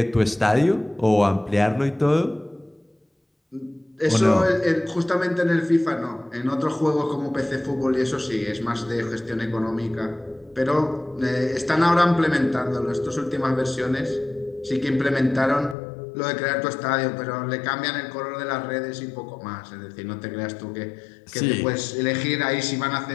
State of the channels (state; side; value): drops out; right; at 15.8 s